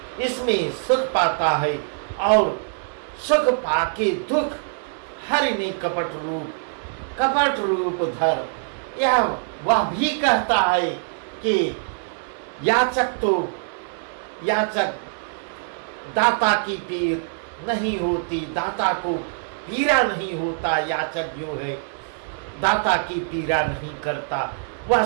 इसमें सुख पाता है, और सुख पाके दुख हरि ने कपट रूप धर। यह वह भी कहता है कि याचक दाता की पीर नहीं होती, दाता को पीरा नहीं होता। याचक जो है दाता की पीरा नहीं करता, वह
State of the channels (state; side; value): silent; left; 59 dB below the other